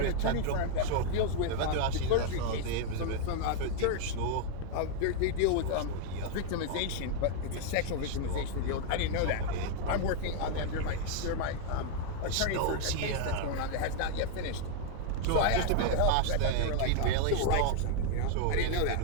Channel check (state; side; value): different; both; correlation 0.00